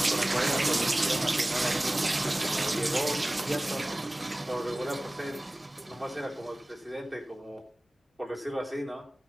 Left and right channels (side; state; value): both; normal; correlation 0.98